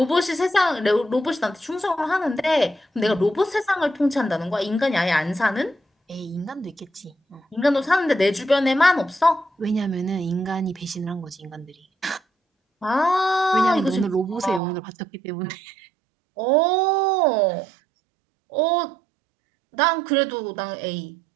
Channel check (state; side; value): drops out; left; at 14.6 s